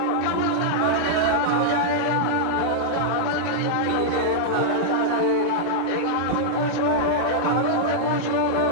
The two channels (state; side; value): different; both; correlation -0.02